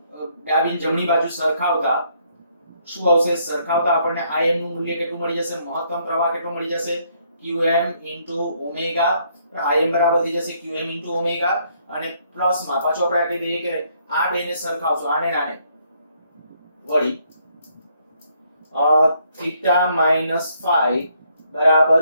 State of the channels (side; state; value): both; inverted; correlation -0.70